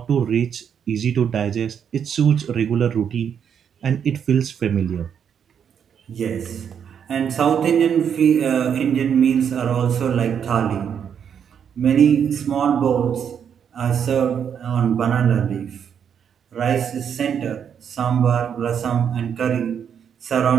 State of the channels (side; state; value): left; quieter; 7.9 dB